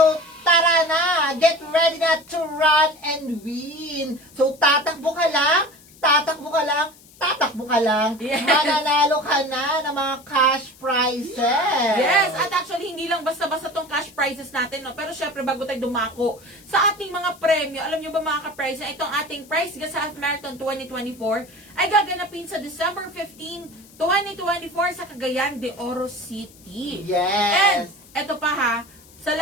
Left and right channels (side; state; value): left; noise; hiss, 24 dB below the sound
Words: tara na! Get ready na to run and win! So, tatakbo ka lang, tatakbo ka lang, tatakbo ka lang, Yes. mananalo ka na ng mga cash prizes! Yes, at actually, hindi lang basta-basta tong cash prizes natin, no? Pero syempre, bago tayo dumako sa ating mga premyo, alam nyo ba mga ka-prize, na itong ating Price Gas Half Marathon 2024 ay gaganapin sa December 15, 2024 sa Cagayan de Oro City. And, Yes! eto pa ha, sa